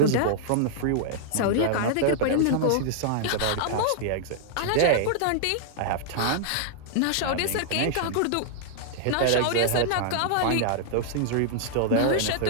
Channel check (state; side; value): different; both; correlation -0.01